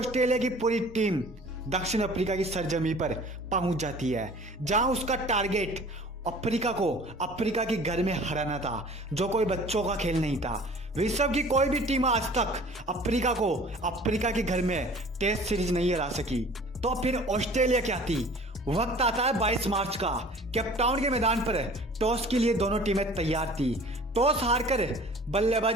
की पूरी टीम दक्षिण अफ्रीका की सरजमी पर पहुंच जाती है, जहां उसका टारगेट अफ्रीका के घर में हराना था, जो कोई बच्चों का खेल नहीं था। विश्व की कोई भी टीम आज तक अफ्रीका के घर में टेस्ट सीरीज नहीं हरा सकी। तो फिर ऑस्ट्रेलिया क्या थी? वक्त आता है 22 मार्च का। केपटाउन के मैदान पर टॉस के लिए दोनों टीमें तैयार थी। टॉस हारकर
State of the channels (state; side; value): normal; both; correlation 0.47